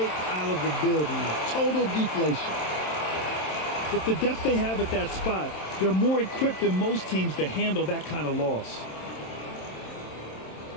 out of the building. Total deflation. With the depth they have at that spot, they're more equipped than most teams to handle that kind of loss.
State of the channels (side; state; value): right; late; 27 ms